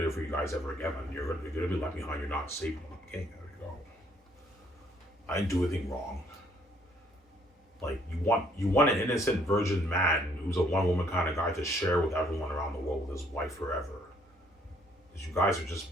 for you guys ever again. And you're gonna be left behind. You're not safe when I'm king. There you go. I didn't do anything wrong. Like you want an innocent virgin man who's a one woman kind of guy to share with everyone around the world with his wife forever. Because you guys are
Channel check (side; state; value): both; normal; correlation 0.65